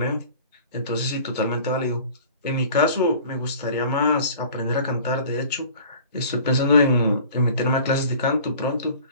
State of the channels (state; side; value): inverted; both; correlation -0.45